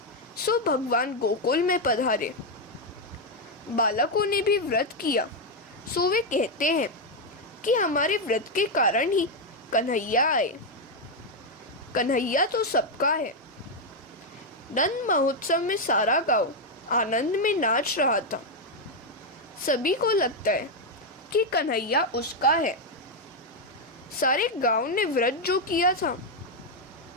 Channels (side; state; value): both; normal; correlation 0.03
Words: सो भगवान गोकुल में पधारे। बालकों ने भी व्रत किया। सो वे कहते हैं कि हमारे व्रत के कारण ही कन्हैया आए। कन्हैया तो सबका है। नंद महोत्सव में सारा गांव आनंद में नाच रहा था। सभी को लगता है कि कन्हैया उसका है। सारे गांव ने व्रत जो किया था,